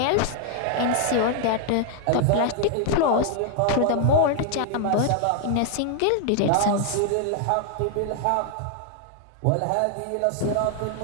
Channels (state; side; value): different; both; correlation 0.00